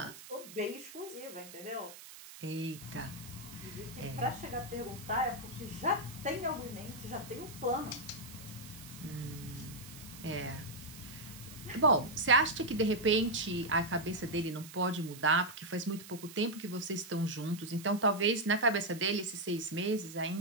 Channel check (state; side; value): noise; right; hiss, 15 dB below the sound